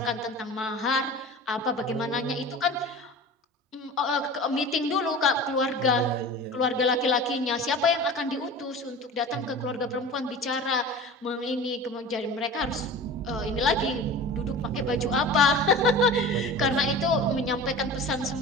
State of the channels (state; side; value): normal; both; correlation 0.36